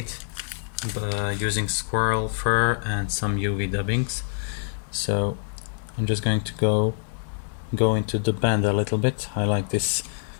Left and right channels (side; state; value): right; silent; digital silence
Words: using squirrel fur and some UV dubbings. So I'm just going to go into the bend a little bit. I like this